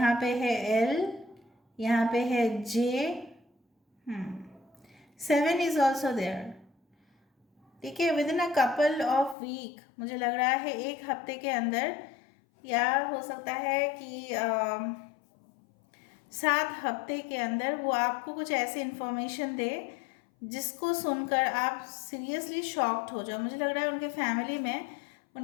पे है एल, यहाँ पे है जे, 7 इज ऑल्सो देयर। ठीक है, within a couple of week, मुझे लग रहा है एक हफ्ते के अंदर, या हो सकता है कि 7 हफ्ते के अंदर वो आपको कुछ ऐसी इंफॉर्मेशन दे जिसको सुनकर आप सीरियसली शॉक्ड हो जाओ। मुझे लग रहा है उनके फैमिली में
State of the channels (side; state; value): right; drops out; at 9.3 s